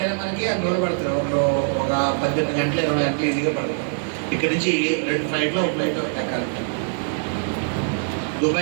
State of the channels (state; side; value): silent; left; 61 dB below the other